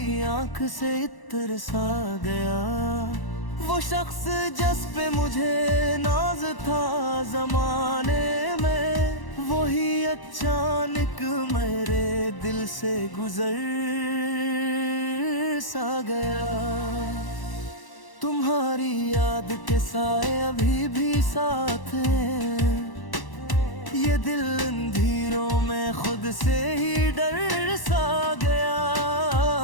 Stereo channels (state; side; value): late; right; 1.0 ms